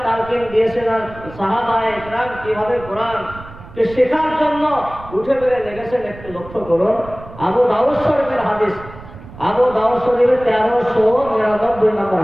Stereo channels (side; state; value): right; noise; rumble, 17 dB below the sound